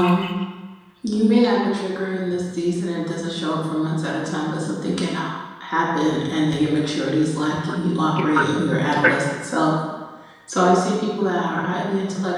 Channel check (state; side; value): identical; both; correlation 1.00